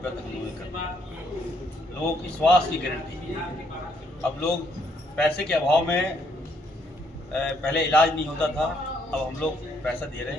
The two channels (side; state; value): both; normal; correlation 0.70